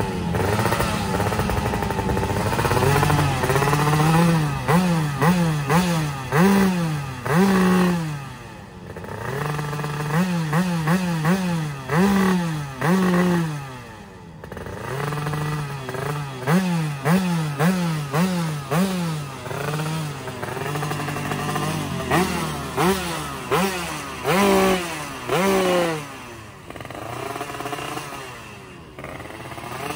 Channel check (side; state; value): both; identical; correlation 1.00